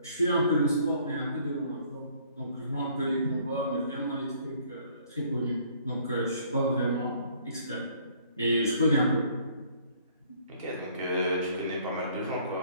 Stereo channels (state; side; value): inverted; both; correlation -0.60